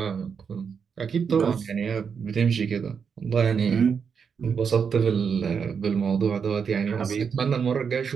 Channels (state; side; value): quieter; left; 6.4 dB